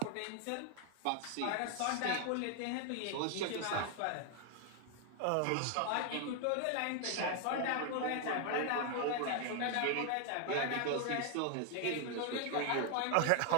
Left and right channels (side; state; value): both; different; correlation 0.00